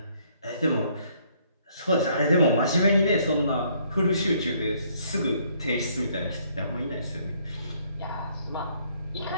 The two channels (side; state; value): both; inverted; correlation -0.66